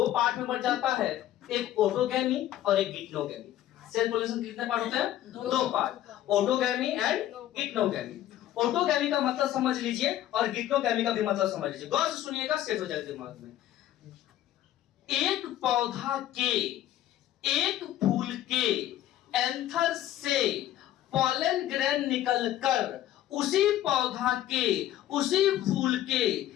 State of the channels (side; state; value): right; quieter; 13.0 dB